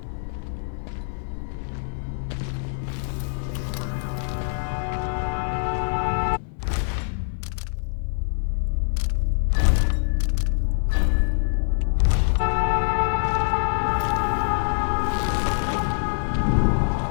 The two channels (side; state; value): right; silent; 62 dB below the other